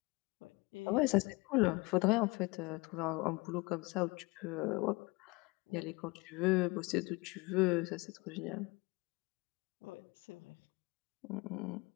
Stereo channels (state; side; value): quieter; right; 25.3 dB